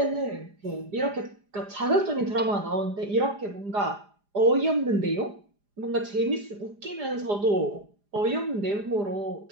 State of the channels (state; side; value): late; left; 4.9 ms